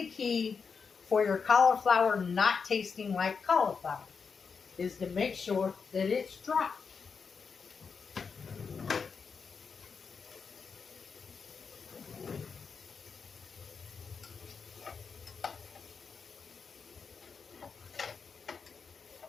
key for your cauliflower not tasting like cauliflower, is to make sure that it's dry.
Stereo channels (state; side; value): quieter; right; 5.6 dB